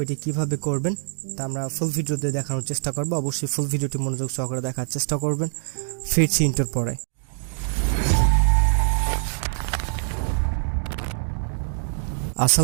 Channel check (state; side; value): silent; left; digital silence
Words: এটি কীভাবে করবেন। তা আমরা ফুল ভিডিওতে দেখানোর চেষ্টা করবো। অবশ্যই ফুল ভিডিওটি মনোযোগ সহকারে দেখার চেষ্টা করবেন। ফিরছি ইন্টার পরে।